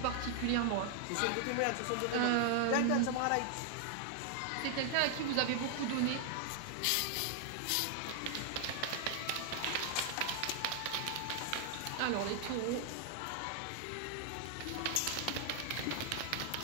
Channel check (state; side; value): different; both; correlation 0.00